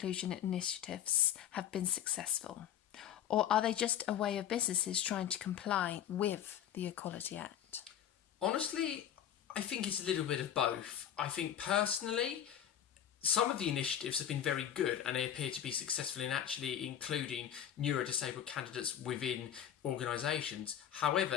initiatives have been successful? Or are they just a way of businesses trying to comply with the Equality Act? Honestly, I think it's a little bit of both. I think personally, some of the initiatives have been very good and they appear to be successful in actually including neurodisabled candidates within organisations.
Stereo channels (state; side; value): quieter; right; 10.0 dB